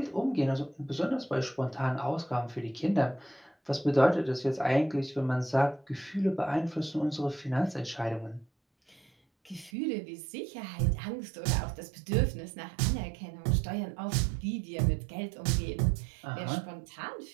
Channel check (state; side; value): drops out; left; at 9.7 s